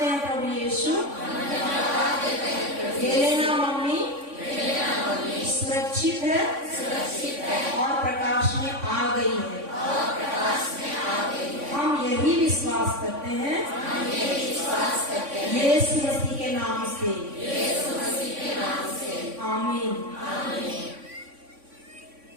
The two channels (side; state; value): left; late; 3.5 ms